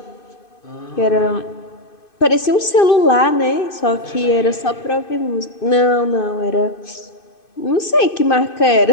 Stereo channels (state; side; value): late; right; 2.5 ms